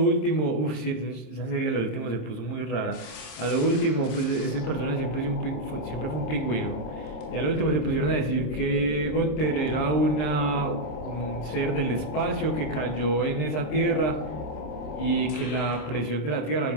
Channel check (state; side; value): late; right; 26 ms